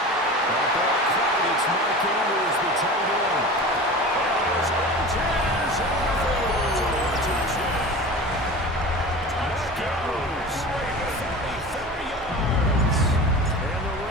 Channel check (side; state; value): both; normal; correlation 0.34